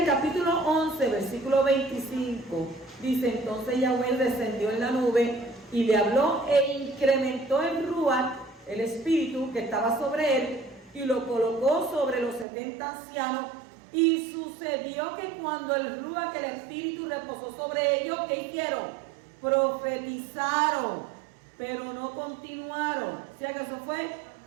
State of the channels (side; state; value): left; drops out; at 12.5 s